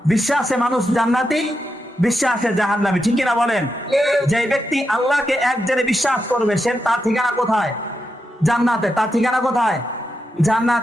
বিশ্বাসে মানুষ জান্নাতি, বিশ্বাসে জাহান্নামী, ঠিক কিনা বলেন? যে ব্যক্তি আল্লাহকে এক জেনে বিশ্বাস করবে সে তার ঠিকানা কোথায়? জান্নাতে। তার ঠিকানা কোথায়?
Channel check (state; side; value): normal; both; correlation 0.86